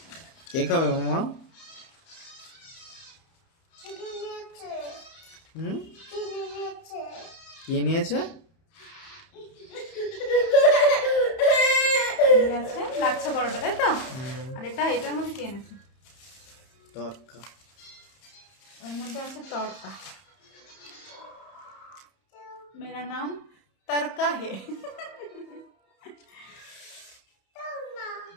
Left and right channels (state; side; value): late; right; 31 ms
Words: কে খাবে মামা? হুম, কে নিয়েছে? আছে লাচ্ছা পরোটা, তাই তো? আর এটার মধ্যে কি এনেছে? তরকা। ওর মধ্যে আছে তড়কা। মেরা নাম তড়কা হে।